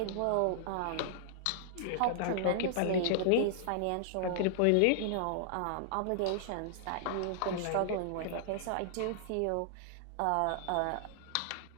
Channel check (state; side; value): different; both; correlation -0.01